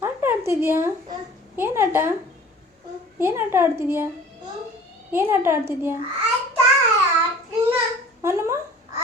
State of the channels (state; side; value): normal; both; correlation 0.46